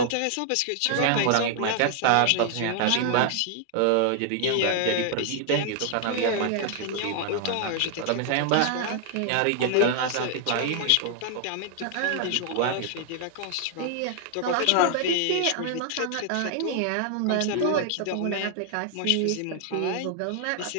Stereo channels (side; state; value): both; different; correlation 0.00